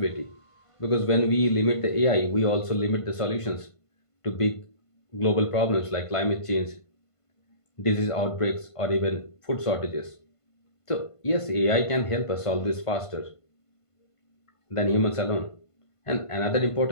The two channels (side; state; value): right; late; 1.5 ms